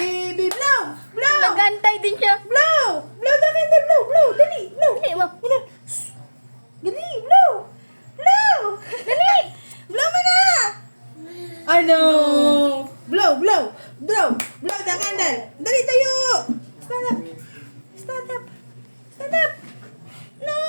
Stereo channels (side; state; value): both; inverted; correlation -1.00